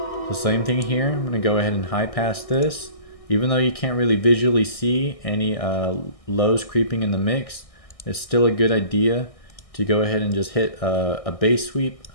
So same thing here, I'm going to go ahead and high pass this. Even though you can't really visually see any lows creeping in the mix, it's still a good idea to go ahead and just hit a bass sweep,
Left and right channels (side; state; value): right; late; 1.6 ms